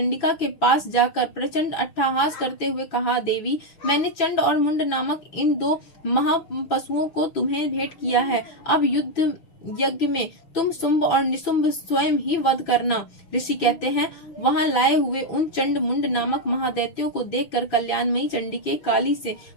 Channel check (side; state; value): right; late; 6.0 ms